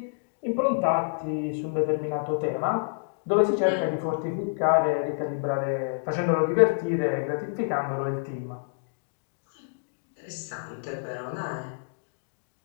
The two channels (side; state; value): right; silent; digital silence